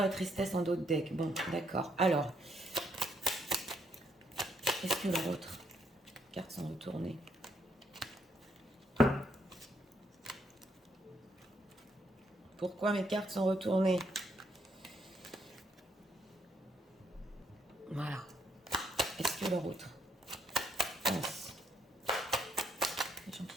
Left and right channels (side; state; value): both; normal; correlation 0.73